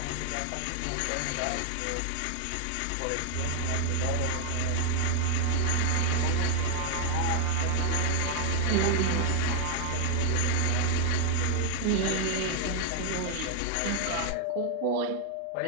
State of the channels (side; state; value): both; different; correlation 0.00